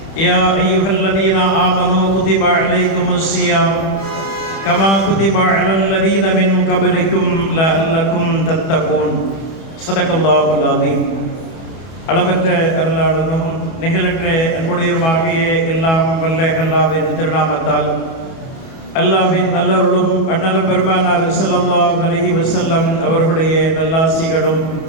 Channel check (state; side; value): late; right; 31 ms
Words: يا أيها الذين آمنوا كتب عليكم الصيام كما كتب على الذين من قبلكم لعلكم تتقون. صدق الله العظيم. அளவற்ற அருளாளனும் நிகழற்ற அன்புடையருமாகிய எல்லாம் வல்ல அல்லாஹ்வின் திருநாமத்தால் அல்லாஹ்வின் நல்லருளும் அண்ணலும் பெருமானார் ஸல்லல்லாஹு அலைஹி வஸல்லம் அவர்களுடைய நல்லாசிகளும்